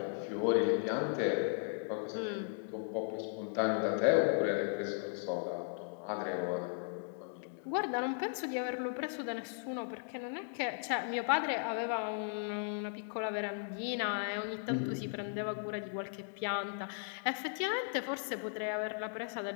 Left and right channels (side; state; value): right; quieter; 37.1 dB